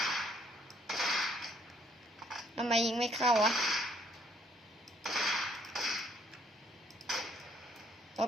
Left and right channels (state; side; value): normal; both; correlation 0.66